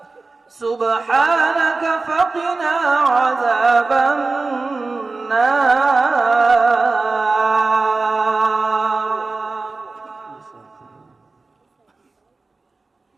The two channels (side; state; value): left; quieter; 3.7 dB